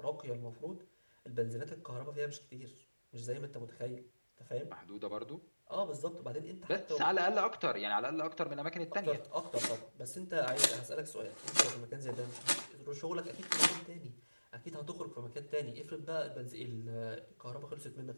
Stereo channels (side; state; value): both; inverted; correlation -1.00